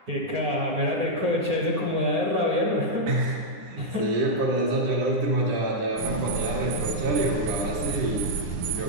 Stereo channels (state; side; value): late; left; 9.8 ms